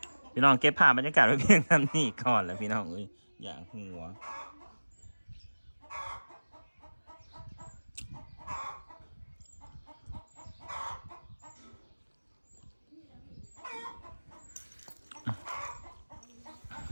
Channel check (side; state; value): both; inverted; correlation -1.00